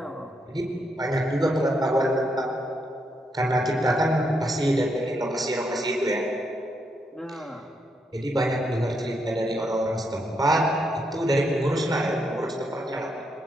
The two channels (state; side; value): normal; both; correlation 0.79